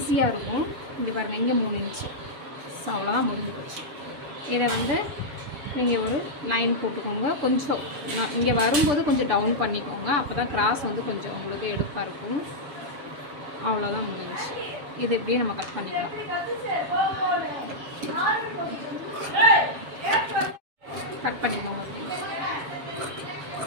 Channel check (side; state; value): left; late; 6.8 ms